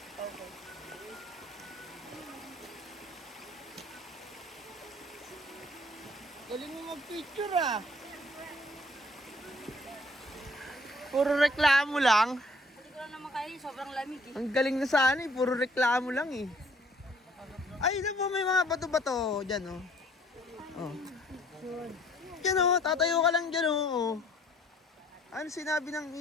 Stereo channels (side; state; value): both; normal; correlation 0.59